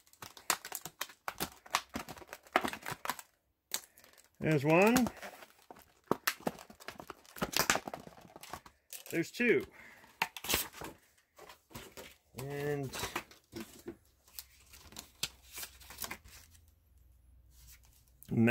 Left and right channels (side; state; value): both; identical; correlation 1.00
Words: There's one. There's two. And